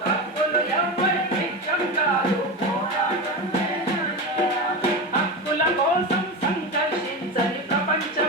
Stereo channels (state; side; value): normal; both; correlation 0.21